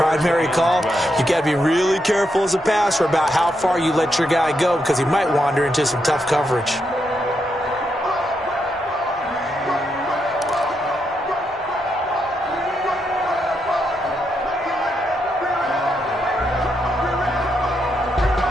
call, you've got to be really careful as a passer about how far you let your guy go because he might wander into some tough coverage.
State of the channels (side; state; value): both; normal; correlation 0.81